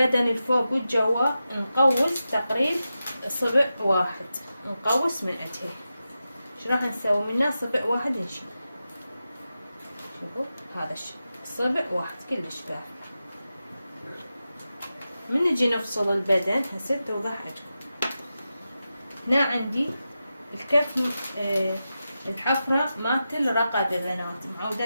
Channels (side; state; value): both; inverted; correlation -0.91